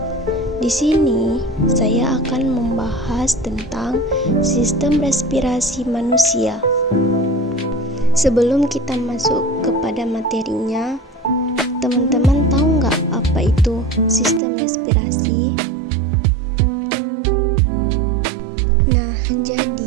Di sini saya akan membahas tentang sistem respirasi manusia. Sebelum kita masuk kepada materinya, teman-teman tahu nggak apa itu sistem respirasi?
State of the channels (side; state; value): left; drops out; at 14.4 s